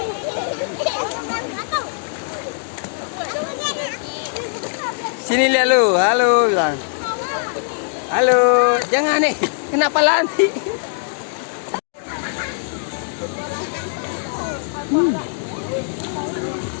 Sini lihat lu, halo bilang. Halo, jangan nih, kenapa lari?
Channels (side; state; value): right; silent; digital silence